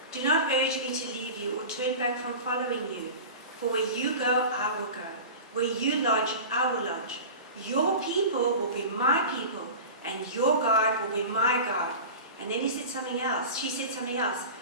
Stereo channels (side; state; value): both; inverted; correlation -0.33